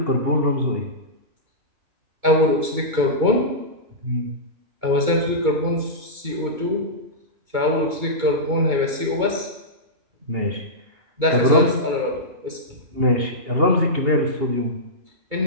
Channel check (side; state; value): left; late; 2.2 ms